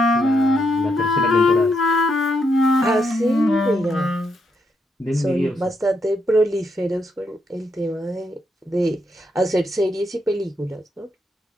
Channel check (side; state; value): both; normal; correlation 0.79